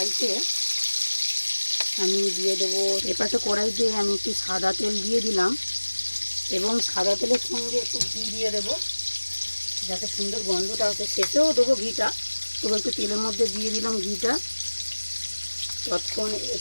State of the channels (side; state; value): both; inverted; correlation -1.00